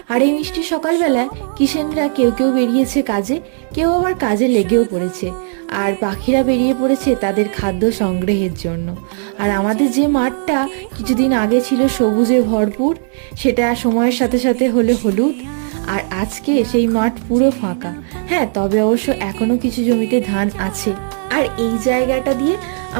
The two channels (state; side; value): silent; left; 64 dB below the other